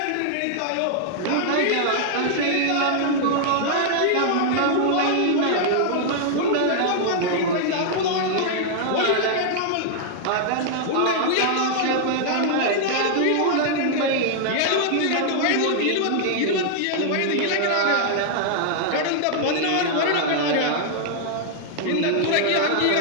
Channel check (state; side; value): different; both; correlation -0.01